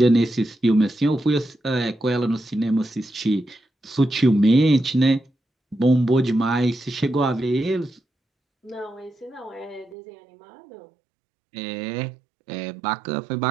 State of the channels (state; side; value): drops out; left; at 10.0 s